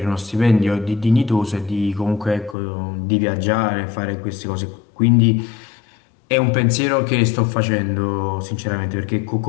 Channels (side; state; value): right; drops out; at 2.6 s